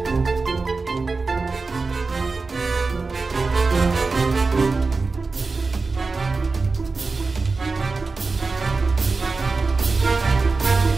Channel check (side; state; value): left; quieter; 4.0 dB